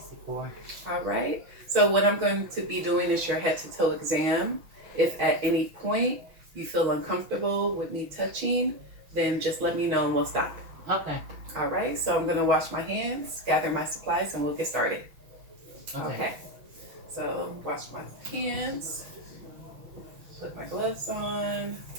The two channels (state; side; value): late; left; 6.0 ms